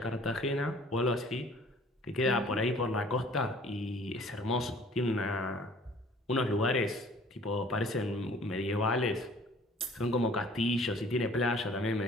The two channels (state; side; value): normal; both; correlation 0.53